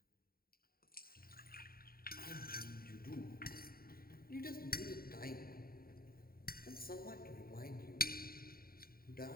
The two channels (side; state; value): right; late; 0.43 ms